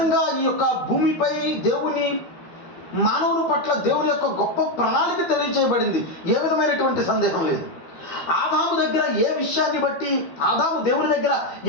ఈ యొక్క భూమిపై దేవుని మానవుని పట్ల దేవుని యొక్క గొప్ప ప్రణాళిక తెలియచేయబడింది. ఏ విధమైనటువంటి సందేహం లేదు. ఆదాము దగ్గర ఏ విషయాన్ని బట్టి, ఆదాము దేవుని దగ్గర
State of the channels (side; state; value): right; late; 12 ms